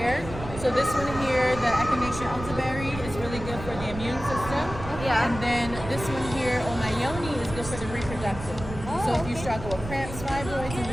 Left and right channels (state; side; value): noise; right; rumble, 10 dB below the sound